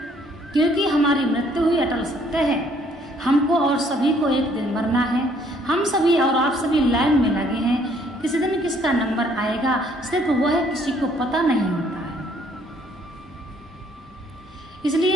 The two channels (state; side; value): normal; both; correlation 0.64